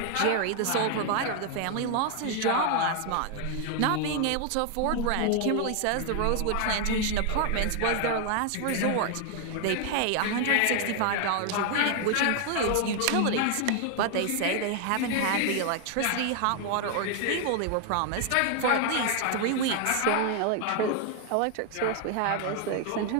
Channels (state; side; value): different; both; correlation 0.00